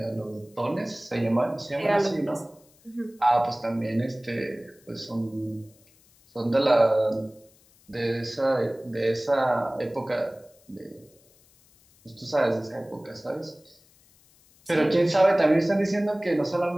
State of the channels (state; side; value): noise; left; hiss, 30 dB below the sound